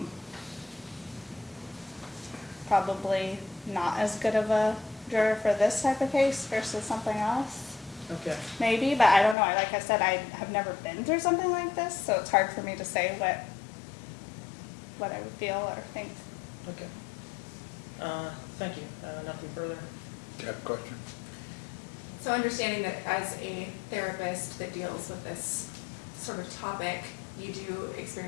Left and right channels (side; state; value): right; drops out; at 9.3 s